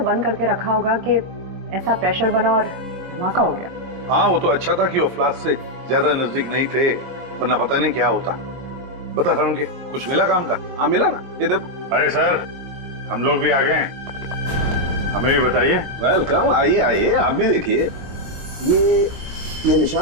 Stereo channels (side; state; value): left; late; 22 ms